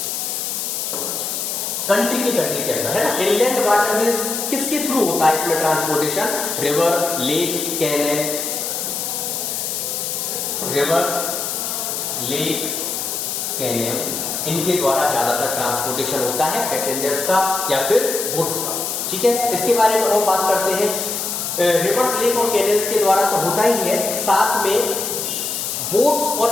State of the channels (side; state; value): left; noise; hiss, 3 dB below the sound